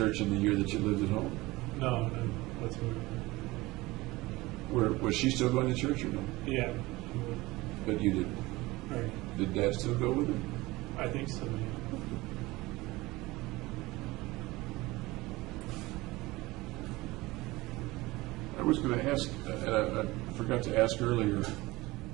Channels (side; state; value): left; quieter; 20.6 dB